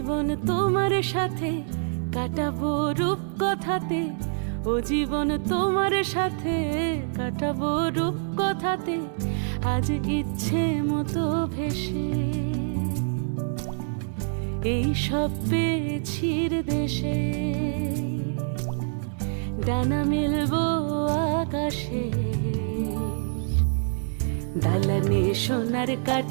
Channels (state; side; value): silent; left; digital silence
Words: তোমার সাথে কাটাবো রূপ কথাতে, ও জীবন তোমার সাথে কাটাবো রূপ কথাতে, আজ ইচ্ছে মতো ভেসে এই সব পেয়েছির দেশে। ডানা মেলবো আকাশে, দালানে সোনার